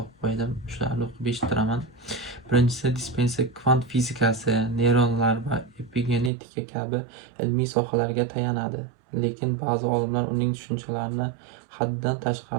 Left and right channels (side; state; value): left; drops out; at 6.3 s